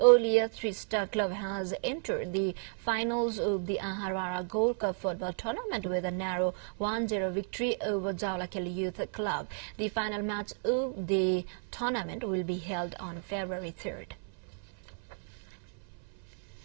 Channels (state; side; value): silent; left; 56 dB below the other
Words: Three-Star Club has entered the finals of the Aharara Gold Cup football tournament with a narrow 1-0 victory over Jalakil Youth Club. The final match of the tournament will be held on February 3rd.